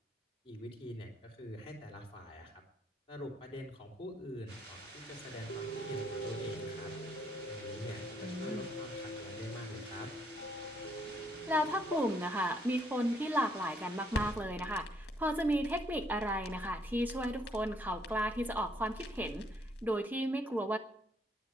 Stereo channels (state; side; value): normal; both; correlation 0.69